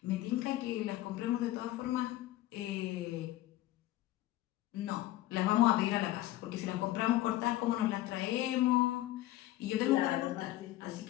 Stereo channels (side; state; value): right; quieter; 15.5 dB